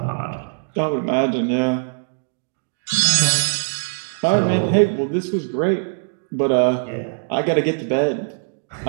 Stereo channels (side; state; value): left; silent; digital silence